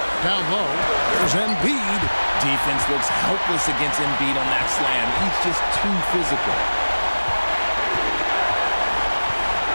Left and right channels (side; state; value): both; inverted; correlation -1.00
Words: Down low, there's Embiid. Defense looks helpless against Embiid on that slam. He's just too physical.